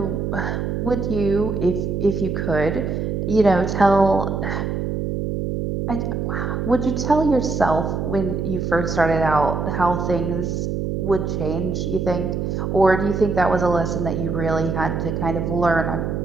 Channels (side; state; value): right; noise; hum, 2 dB below the sound